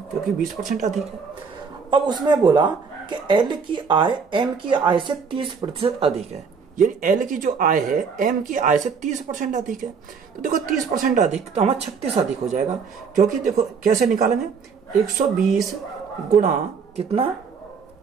क्योंकि 20% अधिक है। अब उसने बोला कि एल की आय एम की आय से 30% अधिक है, यानी एल की जो आय है एम की आय से 30% अधिक है। तो देखो 30% अधिक तो हमारा 36 अधिक हो जाएगा, क्योंकि देखो कैसे निकालेंगे 120 गुणा कितना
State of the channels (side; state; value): left; quieter; 5.7 dB